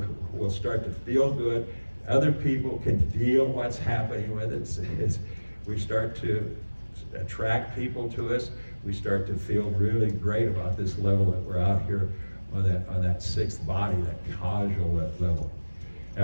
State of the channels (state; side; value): inverted; both; correlation -1.00